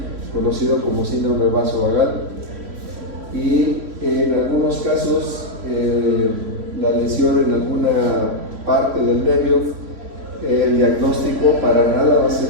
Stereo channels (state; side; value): late; left; 3.6 ms